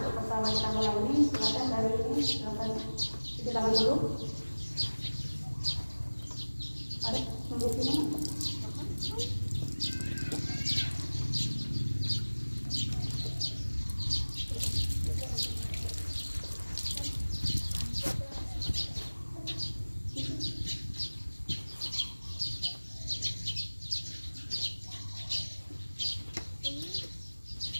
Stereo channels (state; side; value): inverted; both; correlation -1.00